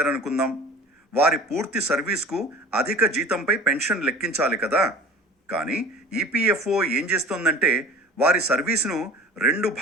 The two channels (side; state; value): both; normal; correlation 0.41